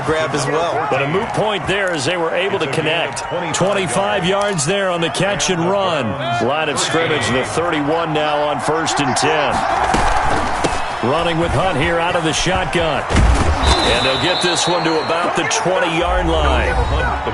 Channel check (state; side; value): identical; both; correlation 1.00